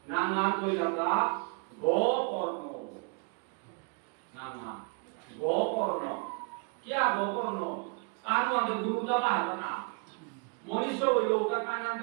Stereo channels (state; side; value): quieter; left; 35.0 dB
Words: নাম করি আমরা গোকর্ণ নাম গোকর্ণ क्या गोकर्ण कानु आदि गुरु का बाहर ना मनुष्य वो लोग का कान